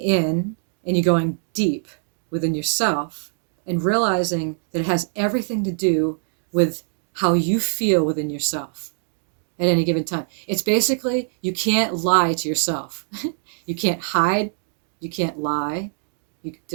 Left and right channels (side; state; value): left; silent; 63 dB below the other